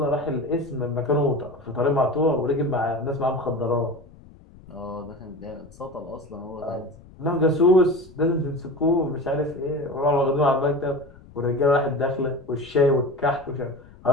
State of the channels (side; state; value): left; noise; rumble, 22 dB below the sound